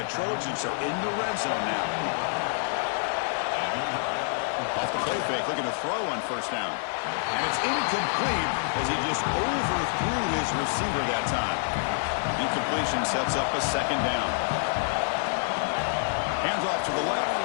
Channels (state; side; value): silent; right; digital silence